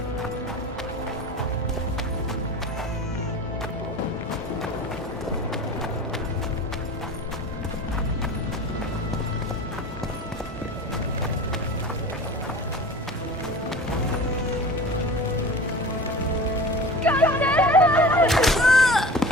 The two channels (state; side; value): normal; both; correlation 0.36